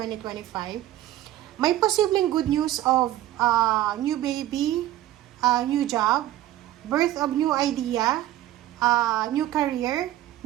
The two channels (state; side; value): quieter; left; 14.0 dB